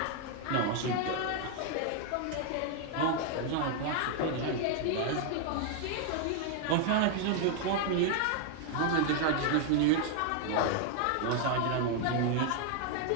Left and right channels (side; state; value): both; different; correlation 0.00